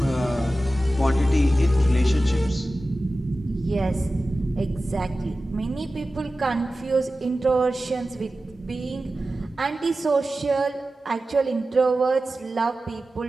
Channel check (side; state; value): both; normal; correlation 0.95